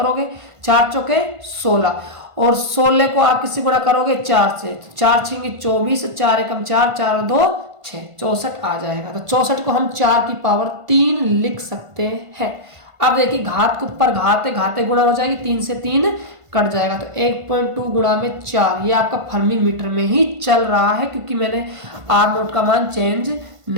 4 चौके 16, और 16 को आप किससे गुणा करोगे 4 से, 4 छेंगे 24, 4 एकम 4, 4 और 2 6, 64 आ जाएगा। तो 64 को हम 4 की पावर 3 लिख सकते हैं। अब देखिए घात के ऊपर घात है, घाते गुणा हो जाएगी, 3 से 3 कट जाएगा। तो 1.2 गुणा में 4, ये आपका फर्मी मीटर में ही चल रहा है, क्योंकि मैंने R0 का मान चेंज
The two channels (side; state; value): left; late; 1.5 ms